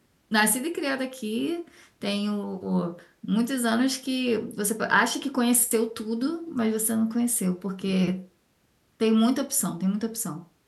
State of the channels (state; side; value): identical; both; correlation 1.00